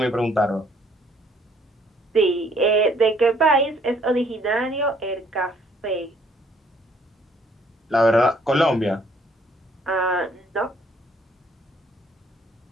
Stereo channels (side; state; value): both; normal; correlation 0.64